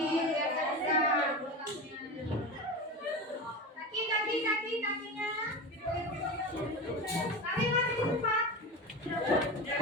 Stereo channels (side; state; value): both; normal; correlation 0.25